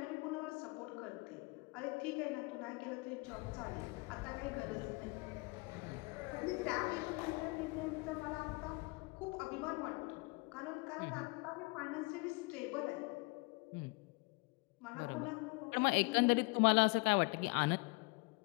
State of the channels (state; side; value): quieter; right; 28.0 dB